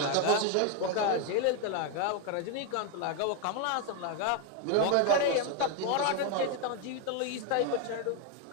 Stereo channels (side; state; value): both; different; correlation 0.01